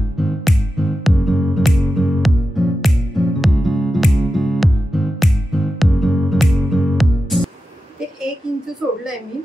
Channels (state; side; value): normal; both; correlation 0.91